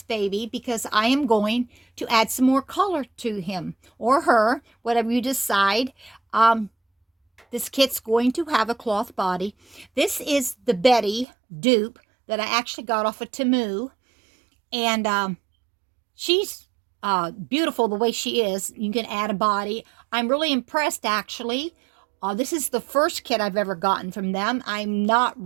baby because I am going to add some more color to him or her, whatever you decide. This kit's going to have a cloth body. This is the Betty dupe that I actually got off of Temu, and she's beautiful the way she is. You can add a body. I'm really impressed, actually. This is the first kit I've ever gotten from them. I'm not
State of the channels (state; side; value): drops out; left; at 11.2 s